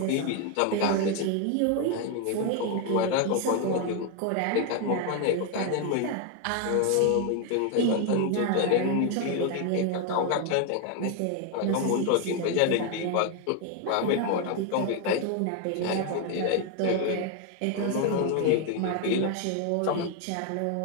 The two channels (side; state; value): both; different; correlation 0.01